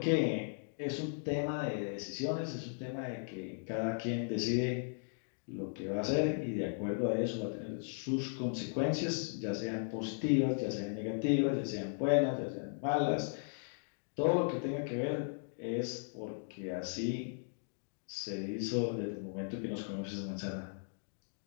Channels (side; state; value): right; silent; digital silence